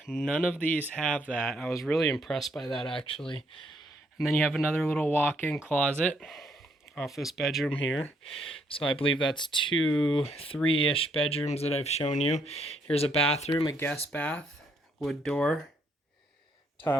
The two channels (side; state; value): both; normal; correlation 0.72